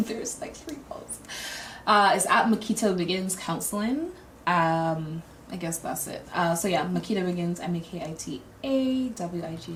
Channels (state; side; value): identical; both; correlation 1.00